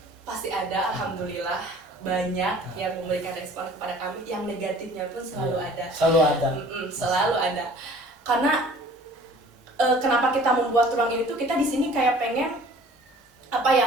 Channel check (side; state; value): both; normal; correlation 0.50